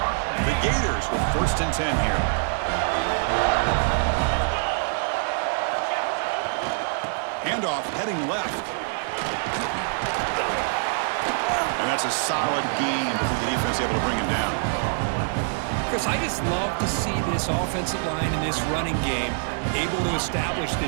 The Gators with first and 10 here. Handoff heading left. And that's a solid gain before the defense able to bring him down. Chris, I just love to see this offensive line in this running game able to establish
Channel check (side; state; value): left; silent; digital silence